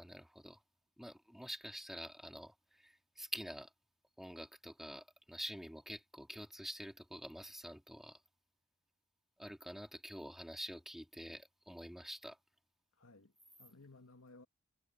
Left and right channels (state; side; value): normal; both; correlation 0.92